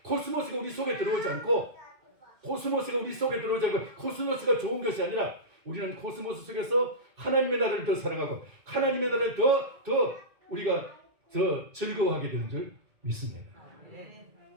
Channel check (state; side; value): late; left; 2.1 ms